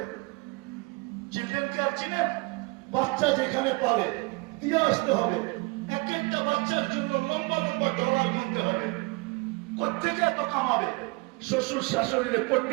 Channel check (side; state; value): left; quieter; 27.3 dB